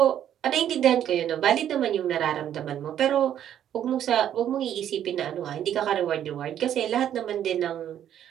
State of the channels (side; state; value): left; quieter; 10.4 dB